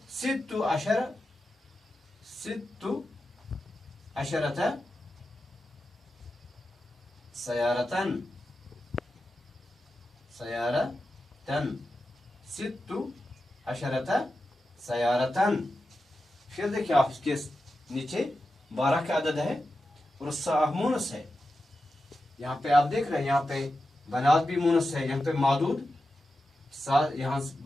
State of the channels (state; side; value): normal; both; correlation 0.91